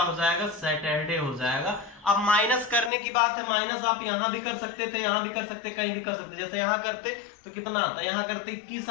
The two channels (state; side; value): drops out; right; at 2.9 s